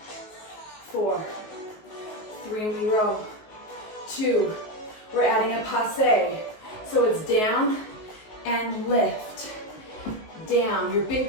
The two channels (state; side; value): late; right; 19 ms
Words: 4. 3, and we row. 2. We're adding a passe. So it's down and lift. Down. Your big